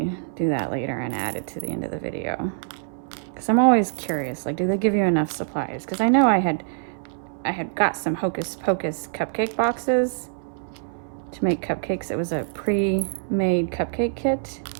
do that later and add it to the end of the video. Because I'm always curious, like, do they give you enough supplies? Because I know I had got some Hocus Pocus cupcake boxes to make cupcakes. It was a pre-made cupcake kit,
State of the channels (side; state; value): left; silent; 62 dB below the other